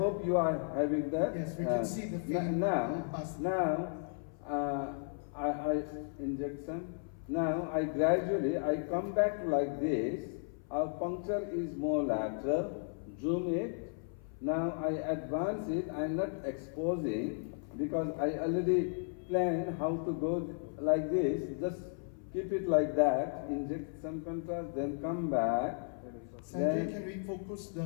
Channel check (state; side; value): silent; right; 55 dB below the other